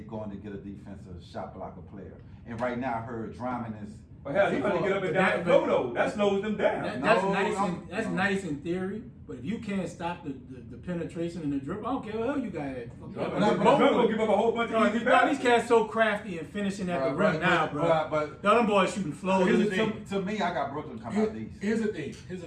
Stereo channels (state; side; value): identical; both; correlation 1.00